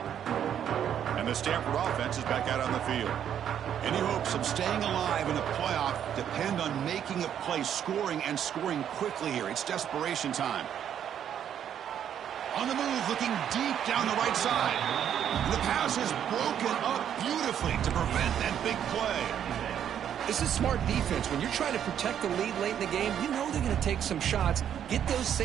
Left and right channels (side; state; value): left; quieter; 9.4 dB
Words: And the Stanford offense is back out on the field. Any hopes of staying alive in a playoff depend on making a play, scoring, and scoring quickly here. It's desperation time. On the move, looking deep down the right side. And the pass is broken up beautifully to prevent that big play. This is smart defense. When you're trying to protect the lead late in the game, you know they're going to take some shots. Get those